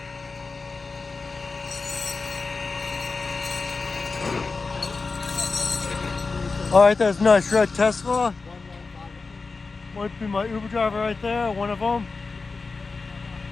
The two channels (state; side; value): quieter; right; 4.2 dB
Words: All right, that's a nice red Tesla. Might be my Uber driver right there, one of them.